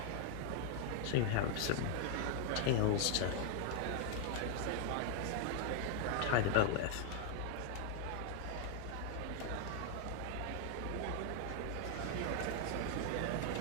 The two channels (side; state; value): both; different; correlation 0.00